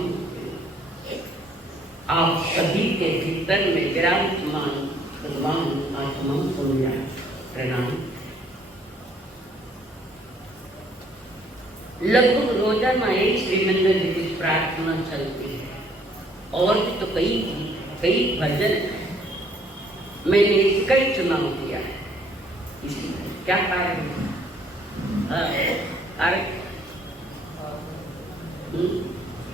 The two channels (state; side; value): normal; both; correlation 0.63